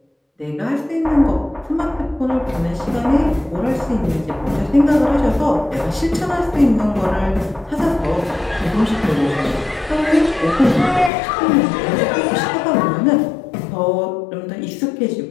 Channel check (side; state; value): right; drops out; at 11.1 s